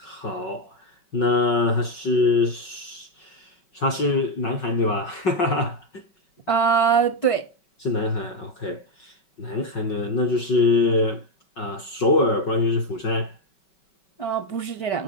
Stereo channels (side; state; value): right; late; 5.2 ms